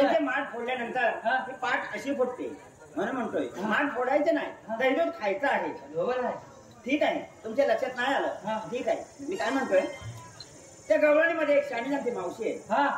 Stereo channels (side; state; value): both; identical; correlation 1.00